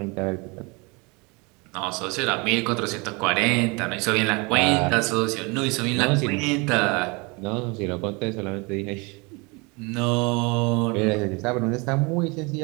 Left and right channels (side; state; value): left; quieter; 28.3 dB